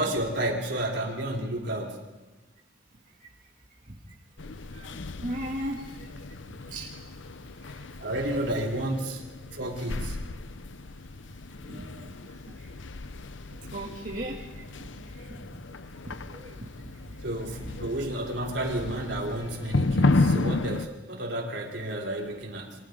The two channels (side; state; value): both; normal; correlation 0.48